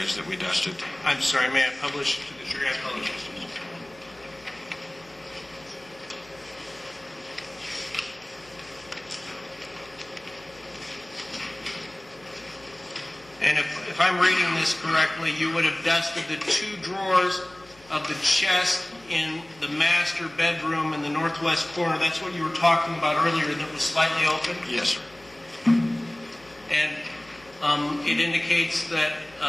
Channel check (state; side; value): noise; left; hum, 27 dB below the sound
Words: that we dusted. I'm sorry, may I publish to the jury? I apologize. And if I'm reading this correctly, you would have dusted the 2 drawers of the chest in the master bedroom in the northwest corner. That's what you were talking about earlier, that was slightly open? Yes, sir. And it indicates that